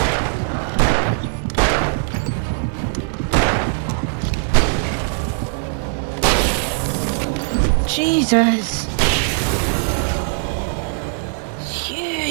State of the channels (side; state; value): left; silent; digital silence